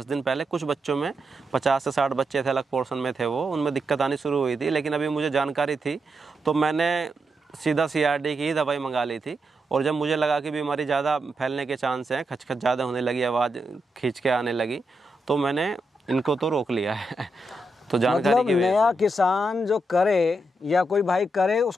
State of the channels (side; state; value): both; normal; correlation 0.84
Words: दिन पहले कुछ बच्चों में, 50 से 60 बच्चे थे, अलग पोर्शन में थे, वो उनमें दिक्कत आनी शुरू हुई थी। लेकिन अभी मुझे जानकारी थी, तो मैंने सीधा CRD की ही दवाई मंगा ली थी। और जब मुझे लगा कि बीमारी ज़्यादा फैलने के चांस हैं, खचखच ज़्यादा होने लगी, आवाज़ खींच के आने लगी, तो मैंने इनको तो रोक लिया है। तो जानकारी मतलब नया किसान जो करे या कोई भाई करे,